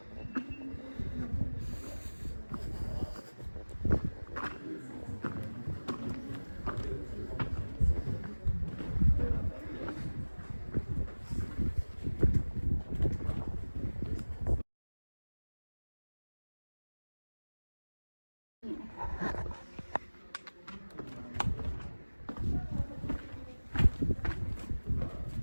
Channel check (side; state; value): both; inverted; correlation -1.00